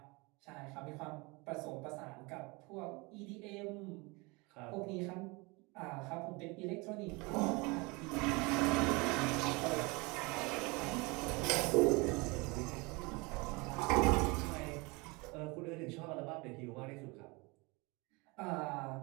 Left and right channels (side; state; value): left; quieter; 26.6 dB